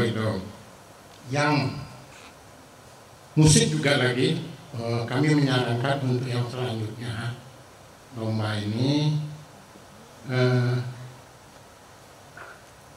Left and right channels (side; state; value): both; identical; correlation 1.00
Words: itu. Yang musik juga lagi kami menyarankan untuk yang selanjutnya lomba ini